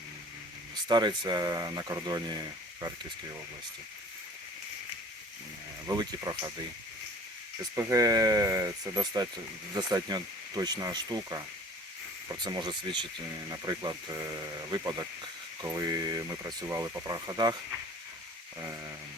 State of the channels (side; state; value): both; normal; correlation 0.46